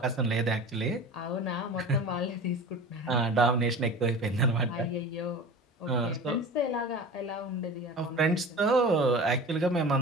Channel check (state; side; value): normal; both; correlation 0.35